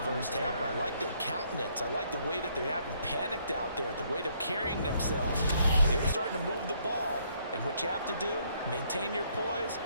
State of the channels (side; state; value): both; inverted; correlation -0.69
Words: half. I like their countenance. I like the way that they haven't panicked out there, the way they're carrying themselves. They're starting to move the ball, and what you have to do, maintain your poise